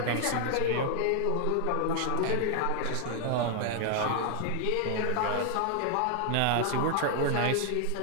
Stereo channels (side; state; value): both; different; correlation 0.00